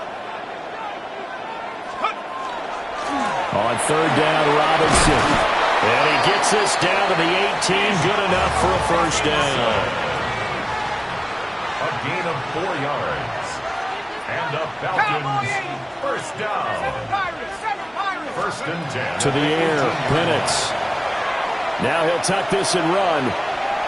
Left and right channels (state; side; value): identical; both; correlation 1.00